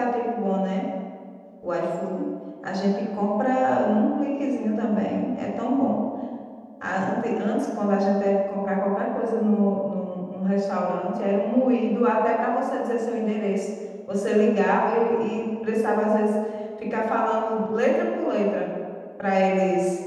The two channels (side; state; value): both; identical; correlation 1.00